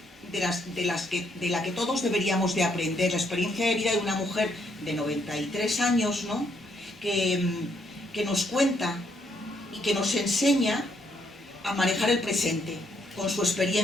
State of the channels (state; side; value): normal; both; correlation 0.73